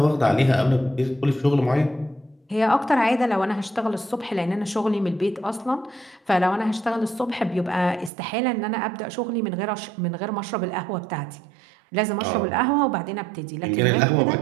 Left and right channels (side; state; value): left; drops out; at 8.1 s